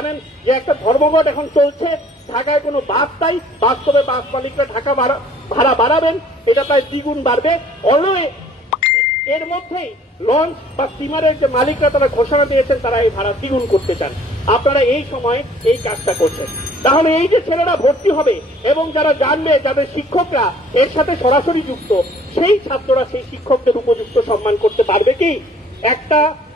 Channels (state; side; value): normal; both; correlation 0.55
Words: যে একটা ধর্মঘট এখন চলছে, ঢাকায় কোনো বাস নাই, বাস্তবে বাস মালিকরা ঢাকা ভাড়া বাড়াবেন, এটা প্রায় দ্বিগুণ বাড়বে। অলওয়ে এর মধ্যেই লঞ্চ বা স্টিমারের যে মালিকরা তারা ঘোষণা দিয়েছেন তারা এই ভাড়া দ্বিগুণ করতে চান। আপনারা এই সময় এই কাজটা করছেন। তাহলে এই যে ছেলেরা ভর্তি হবে এবং যারা জানবে, যাদের শিক্ষকরা এর সাথে সরাসরি যুক্ত, সেই ছাত্ররা সেই শিক্ষকদের উপযুক্ত সম্মান করতে পারবে কি? একটা